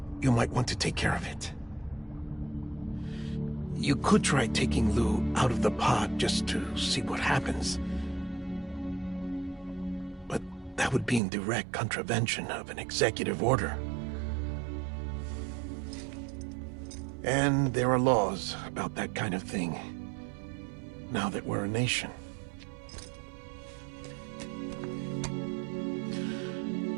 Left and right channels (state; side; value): drops out; left; at 11.2 s